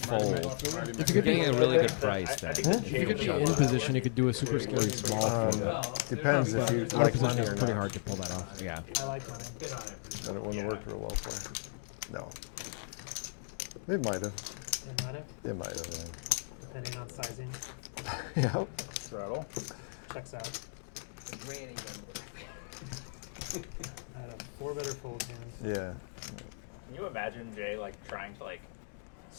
fold. might. Marty might. You're getting a really good I price think then. the If you could be Jay in would position, you could do a super scary small fold. Depends if you Out of like position, money it's or pretty not. hard to pull that off. Yeah. I like mine. Bid on it. That it wouldn't work real well for you. No. It might have. It might have, It might have. depending on sizing. Yeah. Yep. Straddle. Checks out. Granny number. I had a 4 better fold hand. Yeah. Can you imagine Jay like trying to like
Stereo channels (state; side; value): silent; right; digital silence